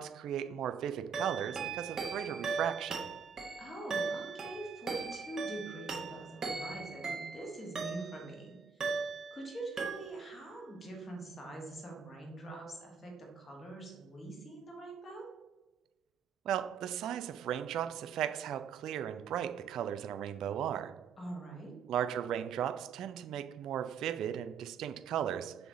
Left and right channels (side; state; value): left; quieter; 6.7 dB